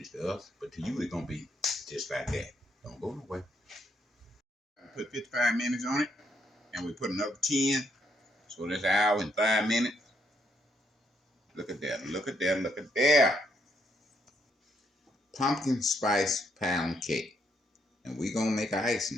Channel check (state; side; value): normal; both; correlation 0.74